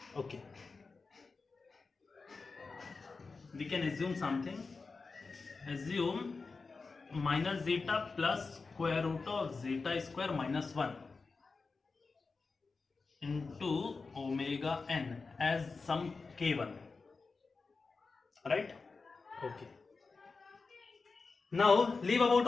Okay. We can assume something. Assume minus zeta plus square root of zeta square minus 1 into omega n as some k1, right? Okay. Now leave about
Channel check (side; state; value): right; quieter; 4.3 dB